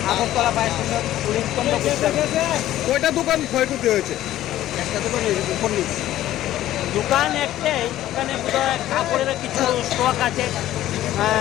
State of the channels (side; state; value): right; quieter; 13.7 dB